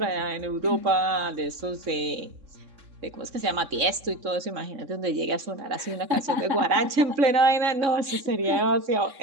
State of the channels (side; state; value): left; late; 3.6 ms